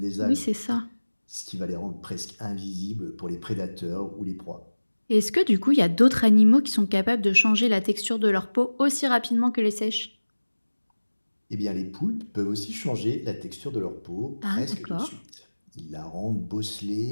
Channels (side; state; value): both; inverted; correlation -1.00